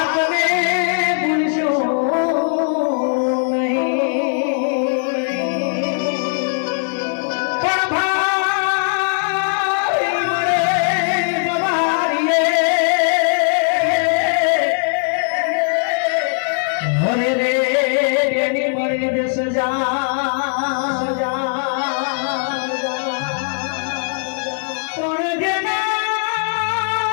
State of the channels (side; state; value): right; silent; 62 dB below the other